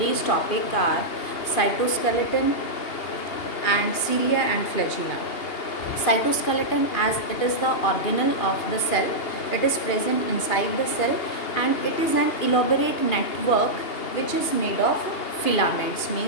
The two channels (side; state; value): right; late; 2.8 ms